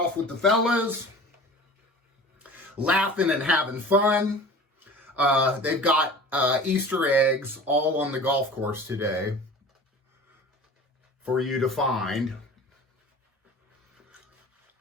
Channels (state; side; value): normal; both; correlation 0.40